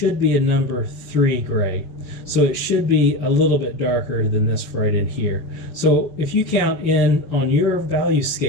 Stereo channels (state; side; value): late; right; 5.9 ms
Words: be a number 3 gray, so it should be a little bit darker than this right in here. So if you count in on your value